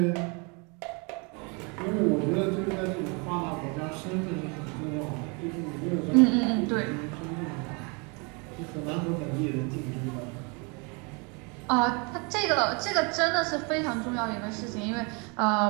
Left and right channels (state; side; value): quieter; left; 32.1 dB